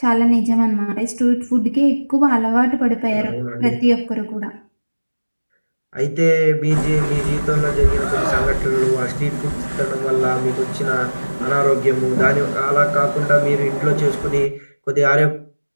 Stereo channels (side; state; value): both; inverted; correlation -1.00